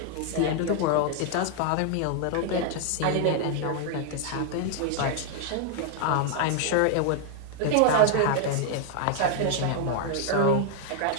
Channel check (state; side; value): different; both; correlation 0.00